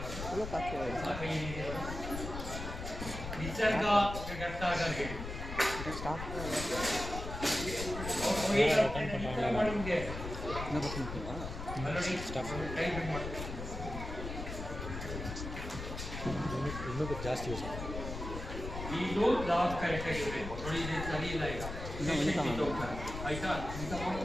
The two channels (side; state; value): left; noise; rumble, 7 dB below the sound